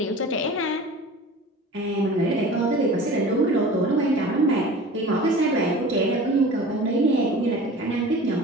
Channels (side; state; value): both; normal; correlation 0.40